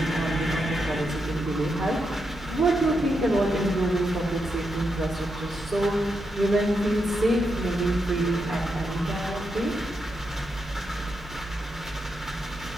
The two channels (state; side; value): normal; both; correlation 0.84